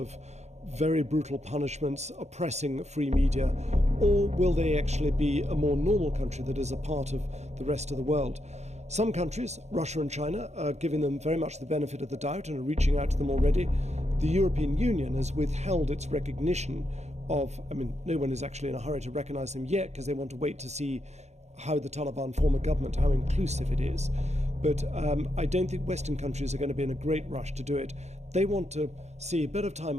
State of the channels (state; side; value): late; left; 0.32 ms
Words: very brutal punishments, oppressing free media, or will they actually be a more normal country that is a part of the rest of the world? Some countries, Russia and China, are giving them very much the benefit of the doubt and are reaching out to them already. The European Union has withheld its recognition of, no one is actually in a hurry to recognize them yet because they want to wait to see how the Taliban form a government, how inclusive it is. But I don't think Western countries are going to be in a great rush to do it. They want to see a bit of